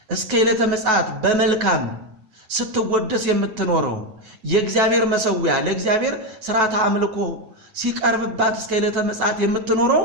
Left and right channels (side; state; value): left; late; 9.2 ms